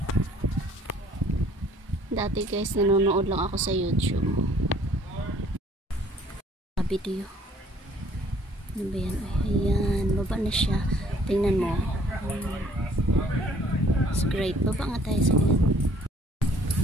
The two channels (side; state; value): both; normal; correlation 0.58